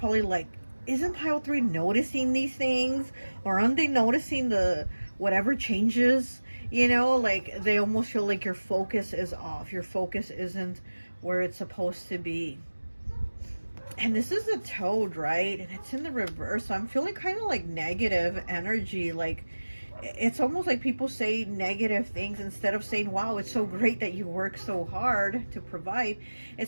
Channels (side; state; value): both; inverted; correlation -1.00